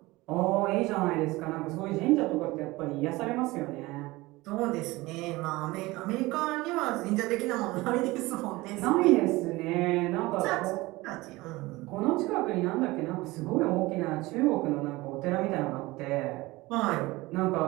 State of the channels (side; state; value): left; quieter; 20.6 dB